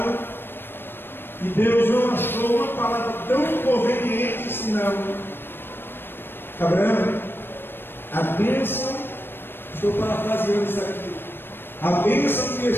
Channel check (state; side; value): late; right; 0.10 ms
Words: e Deus não achou uma palavra tão conveniente senão: Abraão, a bênção, estou parafraseando isso aqui, a bênção que eu